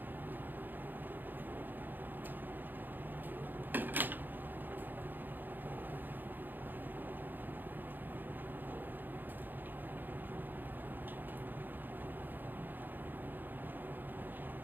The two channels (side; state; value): left; late; 0.089 ms